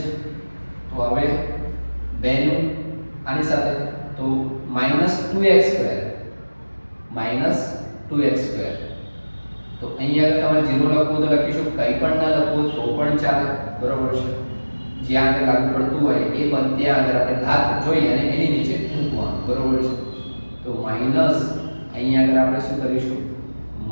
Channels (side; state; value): both; inverted; correlation -1.00